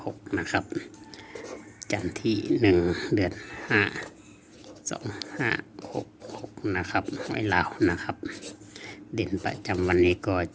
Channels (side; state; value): both; identical; correlation 1.00